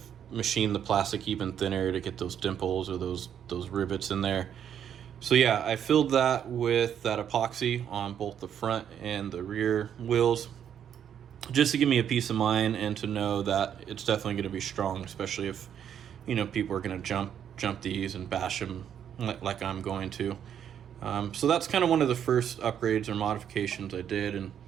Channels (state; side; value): quieter; left; 9.0 dB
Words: machine the plastic even thinner to get those dimples or those rivets in there. So yeah, I filled that with that epoxy on both the front and the rear wheels, just to give me a peace of mind and to know that it's definitely going to be strong, especially if, you know, people are going to jump these and bash them like I'm going to. So that's kind of one of the first upgrades or modifications I did, and